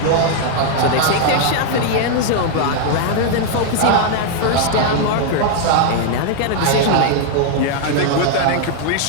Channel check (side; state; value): both; different; correlation 0.00